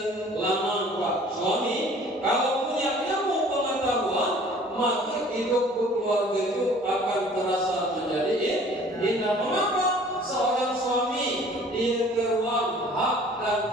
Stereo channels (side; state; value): both; normal; correlation 0.51